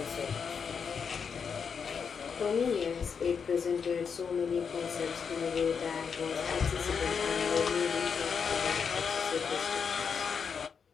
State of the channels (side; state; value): right; quieter; 6.3 dB